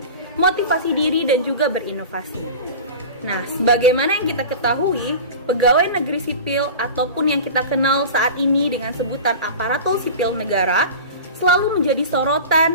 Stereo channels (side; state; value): both; inverted; correlation -0.33